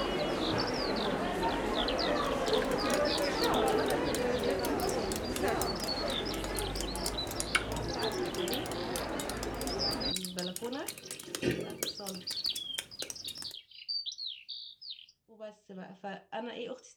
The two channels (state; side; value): identical; both; correlation 1.00